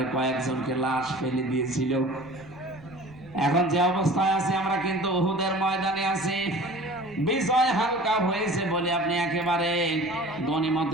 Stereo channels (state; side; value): noise; right; rumble, 24 dB below the sound